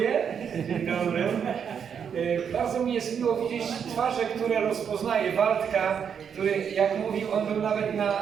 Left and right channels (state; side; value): quieter; left; 7.5 dB